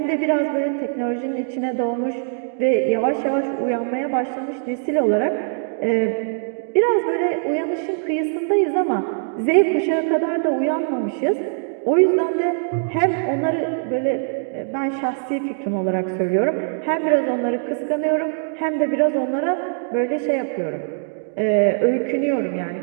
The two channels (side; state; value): left; silent; digital silence